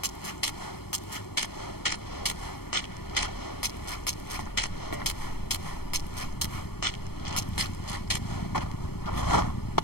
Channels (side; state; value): right; late; 0.96 ms